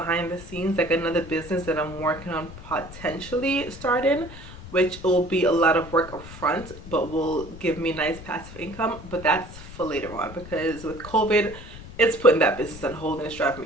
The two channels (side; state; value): left; noise; rumble, 15 dB below the sound